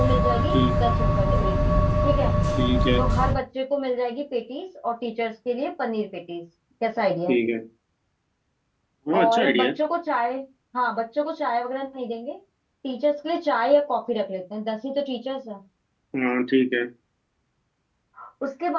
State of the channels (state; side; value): identical; both; correlation 1.00